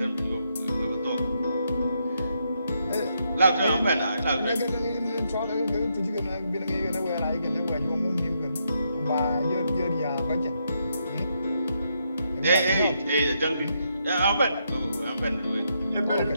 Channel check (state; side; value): inverted; both; correlation -0.79